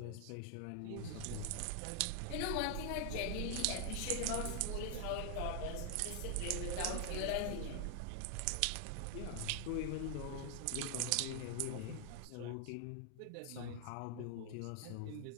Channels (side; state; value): both; different; correlation 0.00